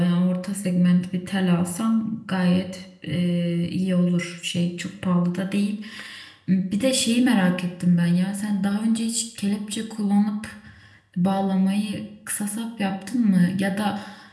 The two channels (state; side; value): identical; both; correlation 1.00